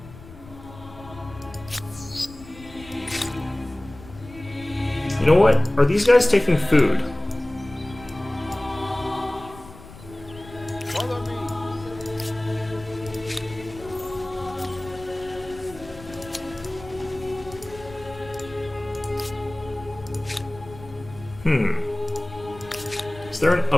You know what? Are these guys taking food? Follow me. Is there an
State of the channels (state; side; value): noise; left; rumble, 18 dB below the sound